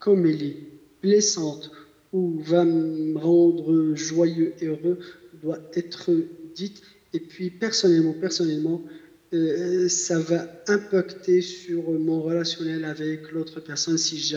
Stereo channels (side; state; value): both; identical; correlation 1.00